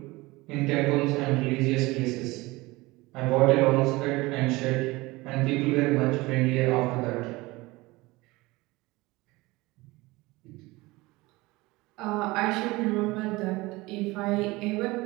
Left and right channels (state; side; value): quieter; left; 21.5 dB